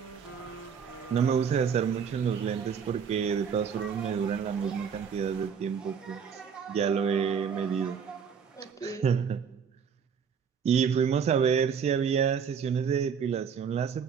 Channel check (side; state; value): left; quieter; 6.8 dB